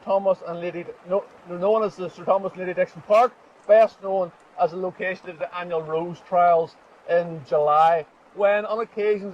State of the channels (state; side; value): identical; both; correlation 1.00